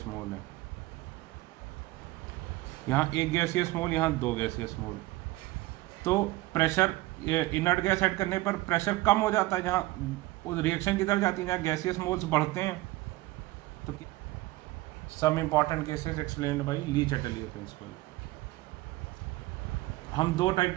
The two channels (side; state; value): left; quieter; 18.8 dB